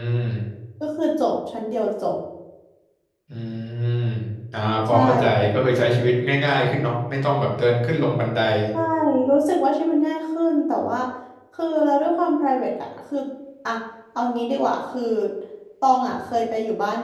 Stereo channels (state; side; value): identical; both; correlation 1.00